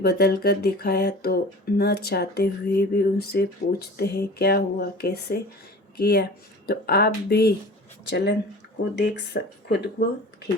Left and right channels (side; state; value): both; normal; correlation 0.40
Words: कर दिखाया तो न चाहते हुए भी उनसे पूछते हैं क्या हुआ, कैसे किया, तो आप भी चलन को देख खुद को